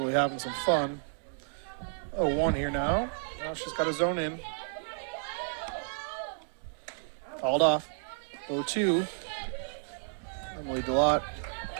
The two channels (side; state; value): left; silent; digital silence